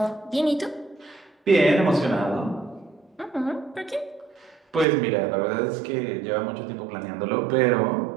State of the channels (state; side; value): drops out; left; at 4.9 s